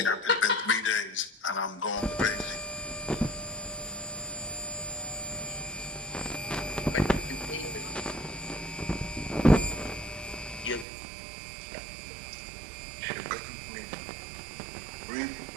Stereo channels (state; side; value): drops out; left; at 10.9 s